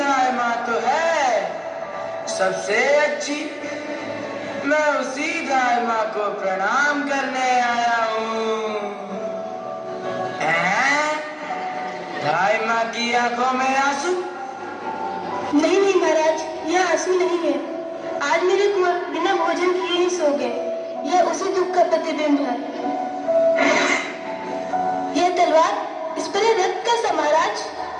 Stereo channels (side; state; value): both; identical; correlation 1.00